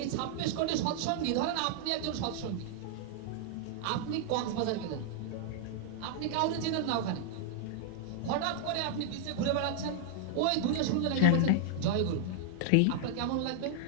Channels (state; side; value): different; both; correlation -0.01